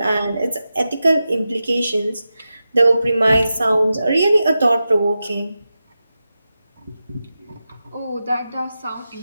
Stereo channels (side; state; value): both; inverted; correlation -0.92